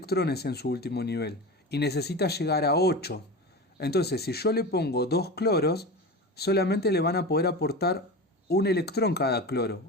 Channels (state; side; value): normal; both; correlation 0.27